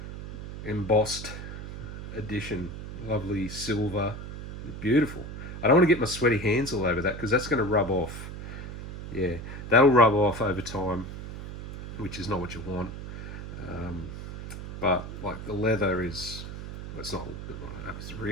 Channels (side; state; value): right; noise; hum, 9 dB below the sound